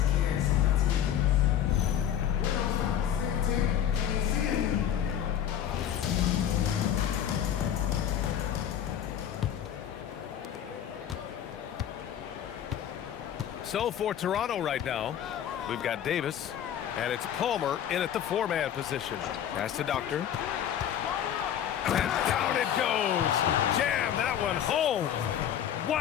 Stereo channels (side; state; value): right; quieter; 10.0 dB